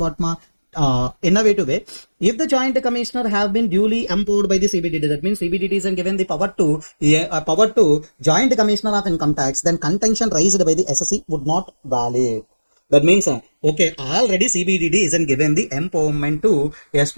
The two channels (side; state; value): both; inverted; correlation -1.00